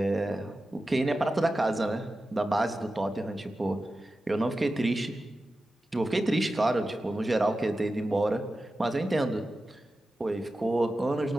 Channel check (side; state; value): both; normal; correlation 0.93